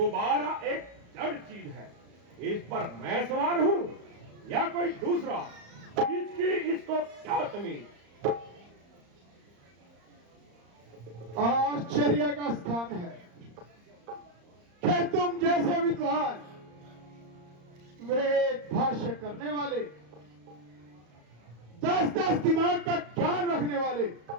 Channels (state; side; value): late; left; 34 ms